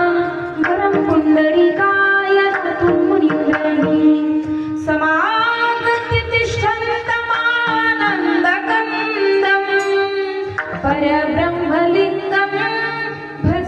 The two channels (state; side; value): identical; both; correlation 1.00